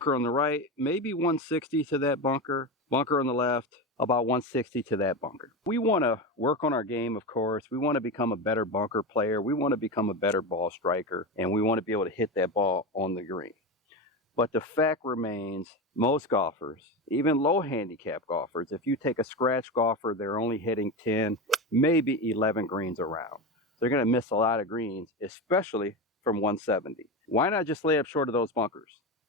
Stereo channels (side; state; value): both; normal; correlation 0.20